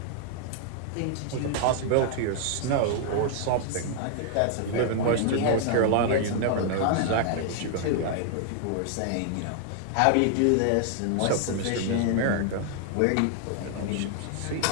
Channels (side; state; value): both; different; correlation 0.00